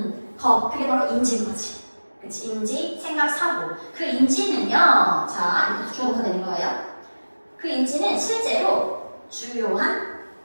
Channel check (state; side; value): inverted; both; correlation -1.00